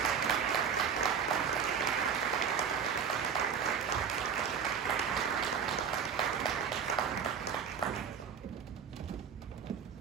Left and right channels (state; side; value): quieter; left; 7.0 dB